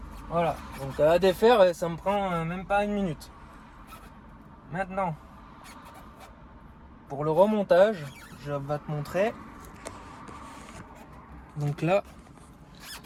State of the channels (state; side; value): identical; both; correlation 1.00